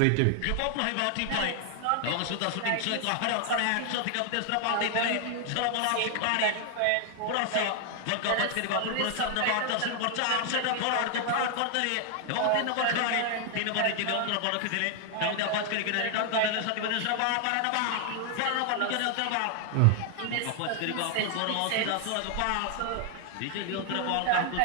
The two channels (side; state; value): both; different; correlation 0.00